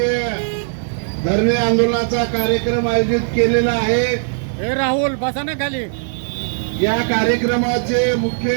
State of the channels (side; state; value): left; silent; digital silence